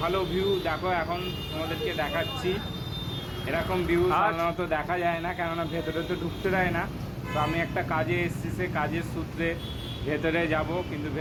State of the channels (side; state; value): both; identical; correlation 1.00